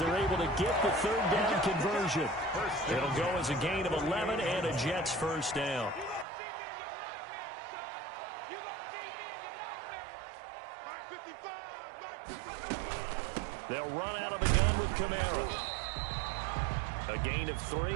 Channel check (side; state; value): left; drops out; at 6.2 s